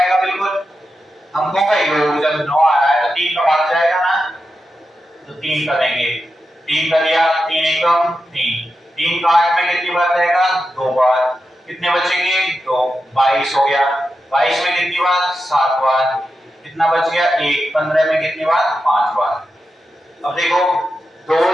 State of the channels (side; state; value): both; normal; correlation 0.89